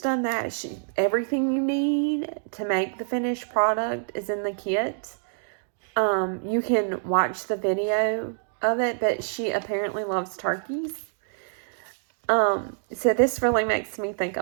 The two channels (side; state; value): left; silent; digital silence